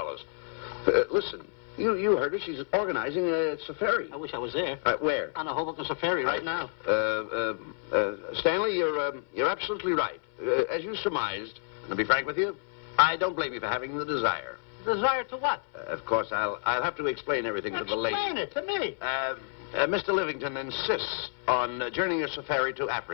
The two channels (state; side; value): silent; right; 58 dB below the other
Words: Listen, you heard her. She's organizing a safari. I wish I was there. Where? On a Hoboken safari right now. Stanley, you're absolutely right. As you surmised, and to be frank with you, I don't blame you for having the desire. Desire to what? Of course, I'll have to explain everything to the lady. Explain it to me. Mr. Livington insists on journeying a safari to